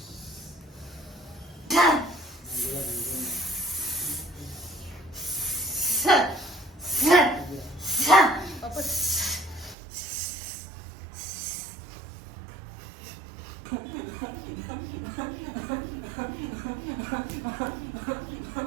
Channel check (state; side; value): drops out; left; at 9.8 s